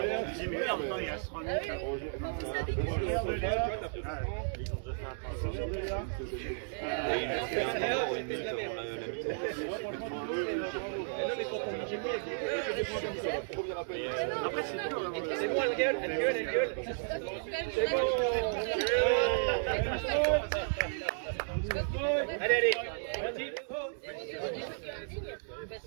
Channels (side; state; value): left; silent; digital silence